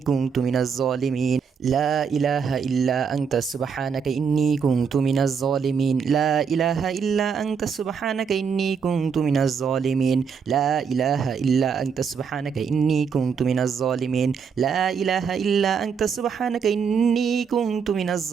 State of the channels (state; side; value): quieter; left; 6.4 dB